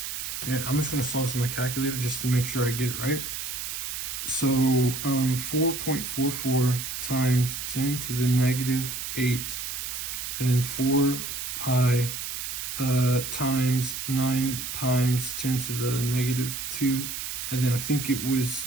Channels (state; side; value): noise; right; hiss, 5 dB below the sound